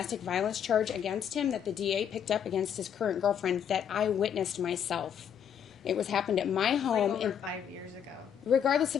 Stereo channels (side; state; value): right; quieter; 8.5 dB